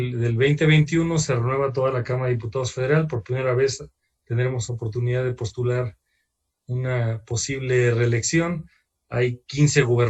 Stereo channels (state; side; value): identical; both; correlation 1.00